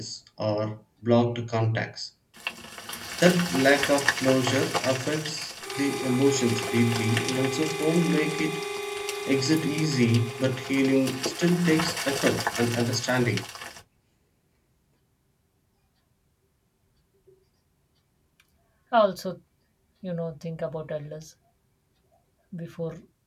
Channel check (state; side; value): identical; both; correlation 1.00